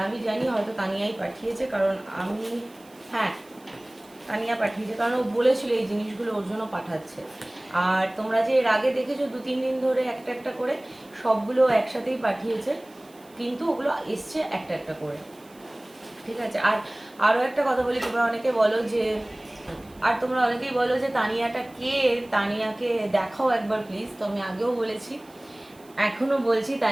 আমি জানি হয়তো তানিয়াই পাঠিয়েছে, কারণ আমি, হ্যাঁ তানিয়া পাঠিয়েছে, কারণ ও বলেছিল এই জিনিসগুলো ওর জন্য পাঠাচ্ছে। আর তোমরা যে এর আগে দেখেছো 2-3 দিন ধরে একটা একটা করে সবগুলো একসাথেই পাঠিয়েছে, কিন্তু ওগুলো এসছে একটা একটা করে। ঠিক আছে, আর আরও একটা কথা বলি, তোমরা অনেকে বলো যে, আর তোমরা অনেকেই বলো যে তানিয়াটা কে, তানিয়াকে দেখাও একবার প্লিজ। তো আমি আগেও বলেছি, এখনও বলছি,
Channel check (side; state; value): right; noise; hiss, 27 dB below the sound